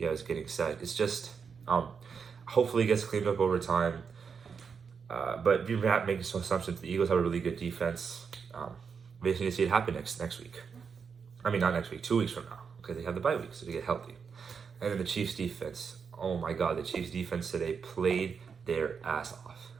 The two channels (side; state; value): left; quieter; 6.1 dB